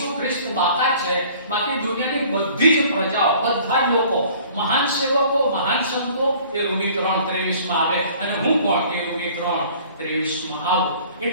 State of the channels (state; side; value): inverted; both; correlation -0.51